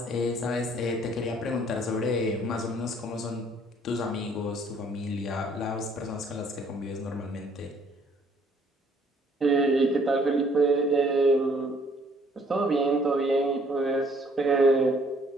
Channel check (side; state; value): both; normal; correlation 0.61